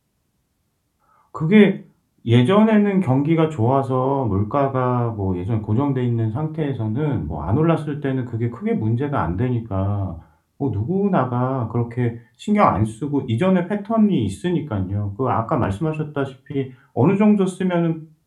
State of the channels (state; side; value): identical; both; correlation 1.00